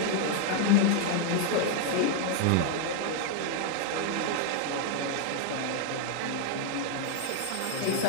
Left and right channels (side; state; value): both; different; correlation 0.00